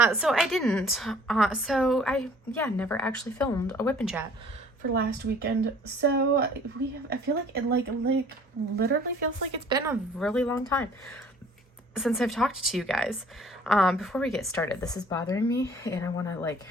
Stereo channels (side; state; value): both; normal; correlation 0.54